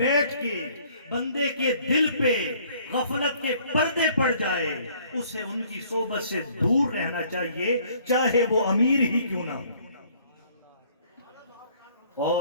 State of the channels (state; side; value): inverted; both; correlation -0.59